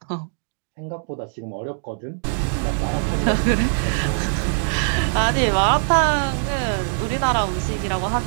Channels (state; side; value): silent; left; digital silence